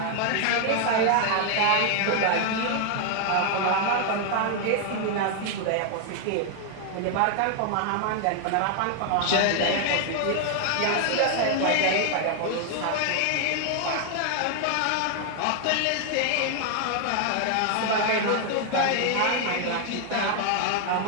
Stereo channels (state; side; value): different; both; correlation 0.00